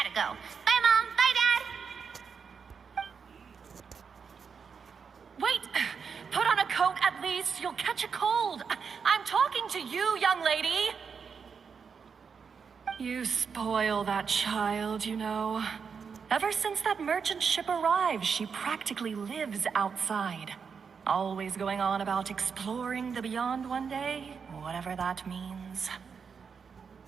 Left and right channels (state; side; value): quieter; left; 6.0 dB